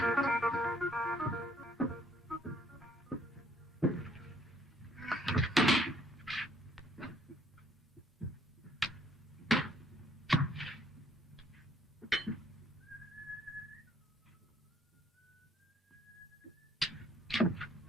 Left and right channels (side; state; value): both; normal; correlation 0.64